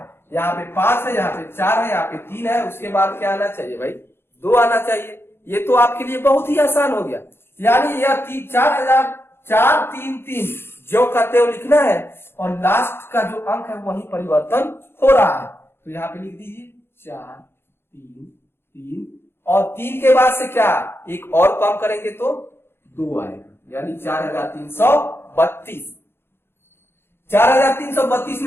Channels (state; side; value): late; right; 0.11 ms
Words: यहाँ पे 5 है, यहाँ पे 4 है, यहाँ पे 3 है। उसके बाद क्या आना चाहिए भाई 2 आना चाहिए। ये तो आपके लिए बहुत ही आसान हो गया। यानी यह 4,333 जो करते हुए लिखना है और लास्ट का जो अंक है वही परिवर्तन हो रहा है। तो यहाँ पे लिख दीजिए 4 3 3 और 3 के बाद से क्या एक और कम करेंगे तो 2 आएगा, यानी 4332। 4332